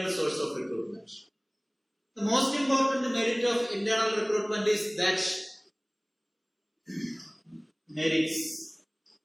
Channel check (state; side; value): identical; both; correlation 1.00